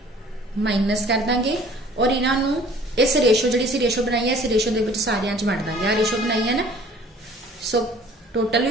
माइनस कर देंगे और इन्हों इस रेशो जी रेशो बनाई है इस रेशो के सारिया च वंड देंगे। आ रेशो बनाई है ना, सो टोटल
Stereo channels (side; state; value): both; normal; correlation 0.52